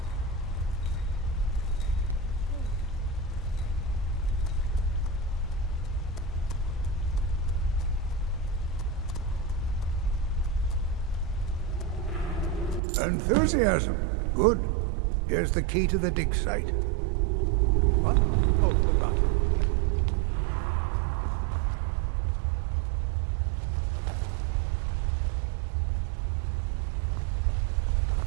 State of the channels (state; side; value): drops out; left; at 12.8 s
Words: Enthusiasm. Good. Here's the key to the dig site. What? Oh, goodbye.